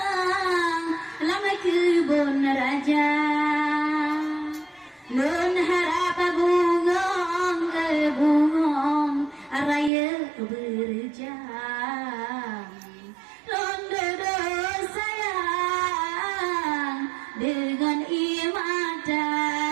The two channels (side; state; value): left; drops out; at 9.9 s